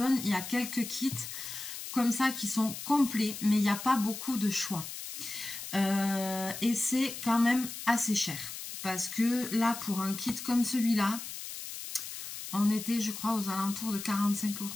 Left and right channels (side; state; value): left; noise; hiss, 9 dB below the sound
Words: il y a quelques kits comme ça qui sont complets, mais il n'y a pas beaucoup de choix. Et c'est quand même assez cher parce que là pour un kit comme celui-là on était je crois aux alentours de 45